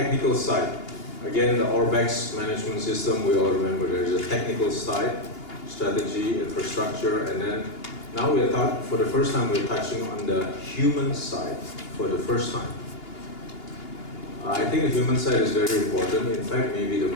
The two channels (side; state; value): right; late; 2.8 ms